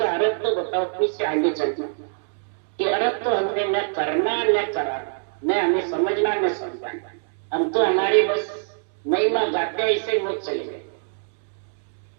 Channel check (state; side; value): silent; left; digital silence